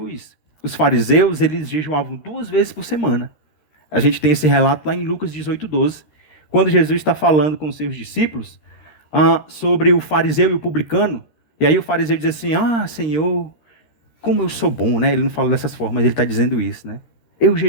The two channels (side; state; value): right; late; 13 ms